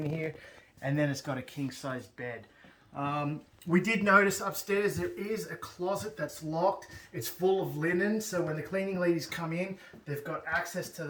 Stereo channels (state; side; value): identical; both; correlation 1.00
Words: here, and then it's got a king-size bed. We did notice upstairs there is a closet that's locked. It's full of linen, so when the cleaning ladies come in, they've got access to